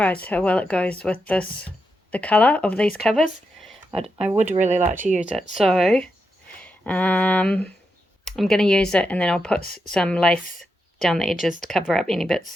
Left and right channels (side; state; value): both; normal; correlation 0.85